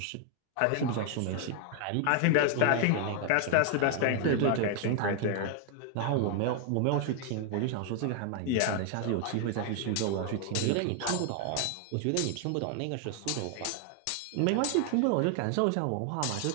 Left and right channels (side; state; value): both; different; correlation 0.00